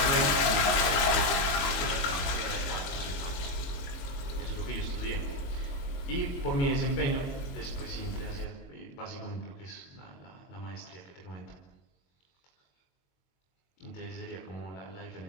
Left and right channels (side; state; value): right; late; 22 ms